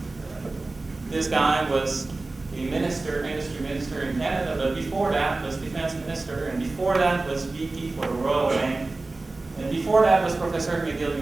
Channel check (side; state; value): left; quieter; 3.3 dB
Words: this guy was a industry minister in Canada, but before that was defense minister, and before that was VP for the Royal Bank, and before that was professor at McGill